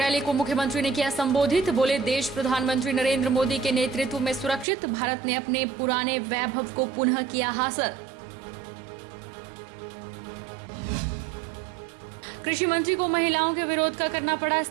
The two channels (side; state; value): left; drops out; at 4.7 s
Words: को मुख्यमंत्री ने किया संबोधित। बोले, देश प्रधानमंत्री नरेंद्र मोदी के नेतृत्व में सुरक्षित, भारत ने अपने पुराने वैभव को पुनः किया हासिल। कृषि मंत्री को महिलाओं के विरोध का करना पड़ा